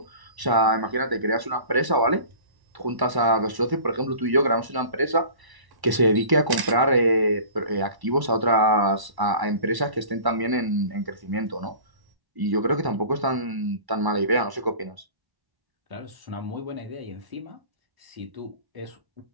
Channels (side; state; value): left; late; 1.1 ms